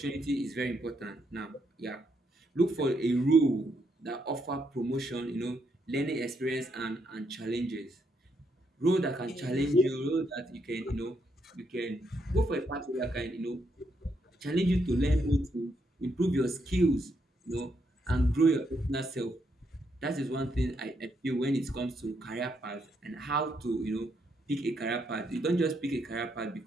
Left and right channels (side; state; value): both; normal; correlation 0.77